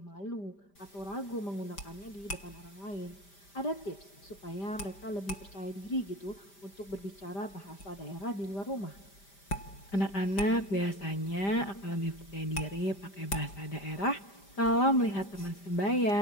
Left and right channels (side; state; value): right; late; 5.0 ms